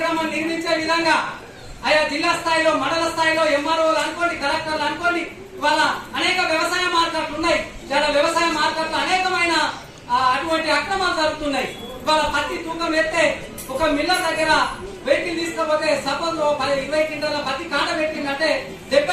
నిర్మించే విధంగా ఆయా జిల్లా స్థాయిలో, మండల స్థాయిలో ఎంఆర్ఓలు అనుకోండి, కలెక్టర్లు అనుకోండి, ఇవాళ అనేక వ్యవసాయ మార్కెట్లు ఉన్నాయి. చాలా వ్యవసాయ మార్కెట్లు అనేకమైన అటువంటి అక్రమాలు జరుగుతున్నాయి. ఇవాళ పత్తి తూకం ఎత్తే ఒక మిల్లర్ దగ్గర వెహికల్ తీసుకపోతే సపోజ్ 20 క్వింటాల పత్తి కాట పెట్టిందంటే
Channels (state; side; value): identical; both; correlation 1.00